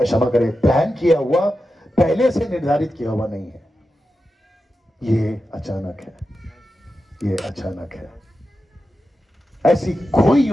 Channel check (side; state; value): both; normal; correlation 0.91